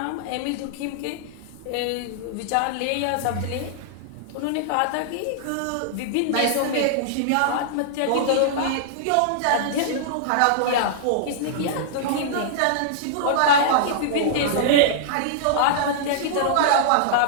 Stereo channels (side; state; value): both; different; correlation -0.02